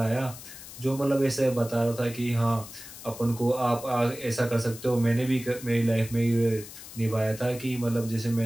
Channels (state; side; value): noise; left; hiss, 14 dB below the sound